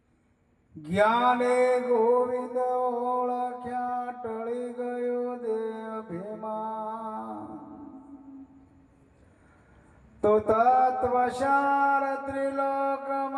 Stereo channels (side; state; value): both; identical; correlation 1.00